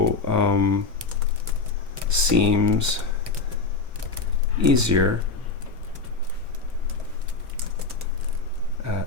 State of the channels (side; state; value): right; quieter; 4.2 dB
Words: seems easier at